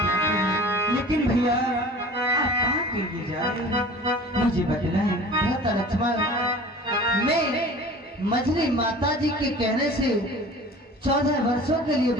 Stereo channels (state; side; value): normal; both; correlation 0.42